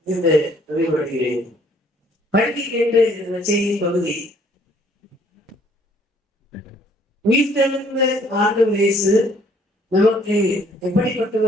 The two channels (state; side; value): normal; both; correlation 0.61